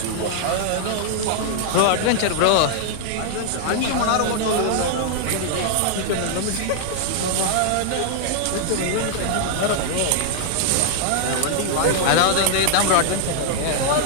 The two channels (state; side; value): different; both; correlation -0.01